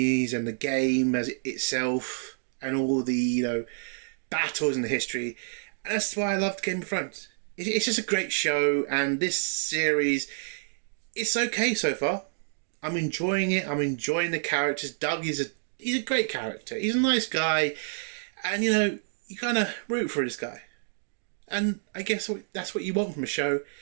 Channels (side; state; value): left; silent; digital silence